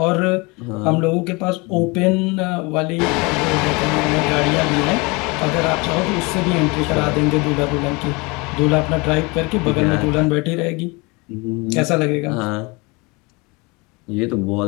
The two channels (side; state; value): right; quieter; 27.0 dB